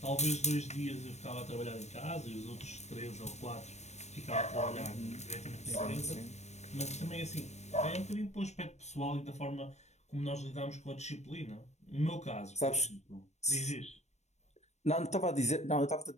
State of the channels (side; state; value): right; late; 0.32 ms